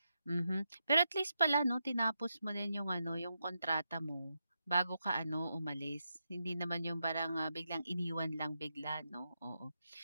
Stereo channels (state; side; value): inverted; both; correlation -0.84